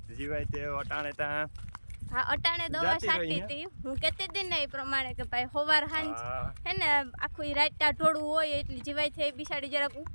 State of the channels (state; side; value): inverted; both; correlation -1.00